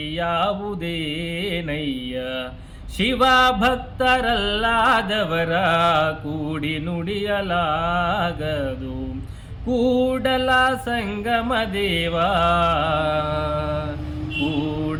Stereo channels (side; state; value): both; identical; correlation 1.00